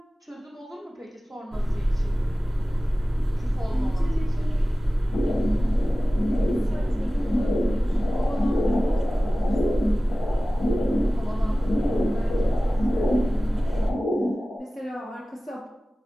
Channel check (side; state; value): both; normal; correlation 0.97